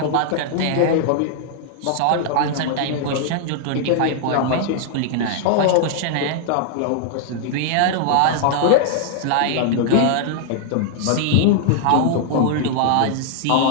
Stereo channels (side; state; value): both; different; correlation -0.01